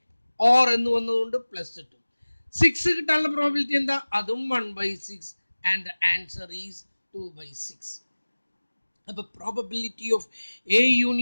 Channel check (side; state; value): both; inverted; correlation -1.00